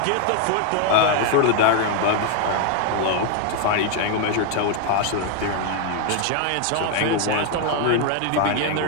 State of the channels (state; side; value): different; both; correlation 0.01